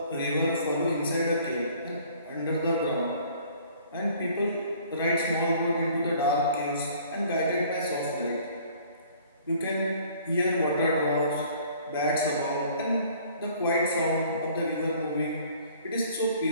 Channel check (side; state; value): both; inverted; correlation -0.55